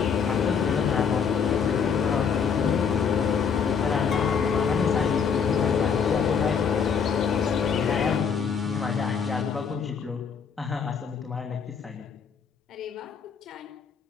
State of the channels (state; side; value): quieter; right; 6.5 dB